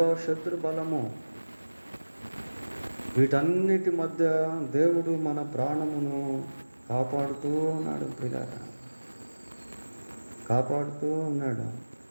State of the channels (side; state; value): both; inverted; correlation -1.00